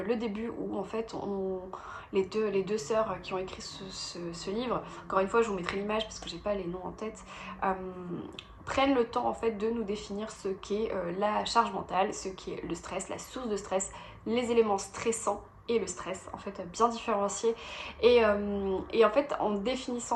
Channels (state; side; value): identical; both; correlation 1.00